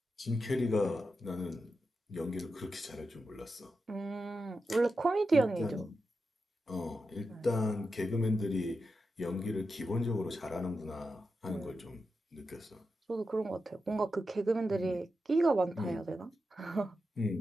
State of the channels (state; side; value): normal; both; correlation 0.89